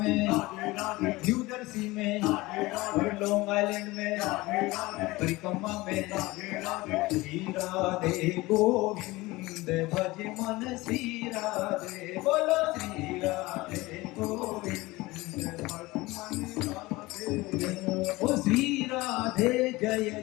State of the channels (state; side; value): quieter; right; 20.6 dB